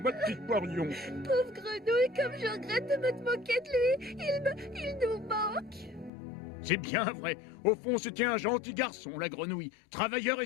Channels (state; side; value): drops out; right; at 6.1 s